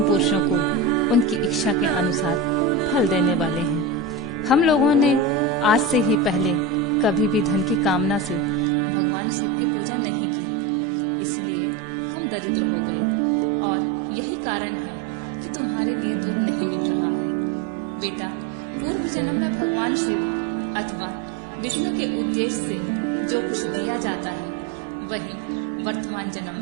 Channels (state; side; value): drops out; left; at 8.7 s